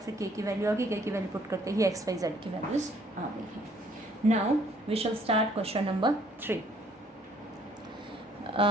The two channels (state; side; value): normal; both; correlation 0.62